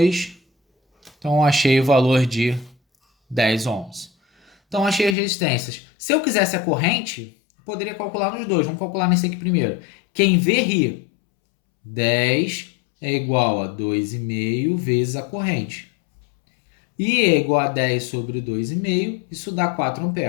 então eu achei o valor de 10 ohms. Então achei as resistências. Se eu quisesse a corrente, poderia calcular nos dois. Vamos calcular nesse aqui primeiro. Quem vê, ri. 10 é igual a 2,5 vezes a corrente. I é igual a 10 sobre 2,5, isso dá 4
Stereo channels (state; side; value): drops out; right; at 5.2 s